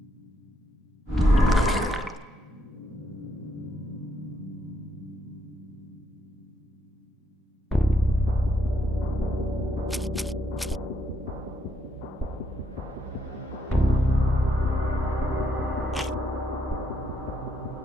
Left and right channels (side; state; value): both; normal; correlation 0.76